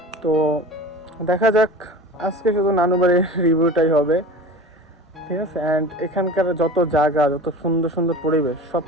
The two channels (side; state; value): both; normal; correlation 0.36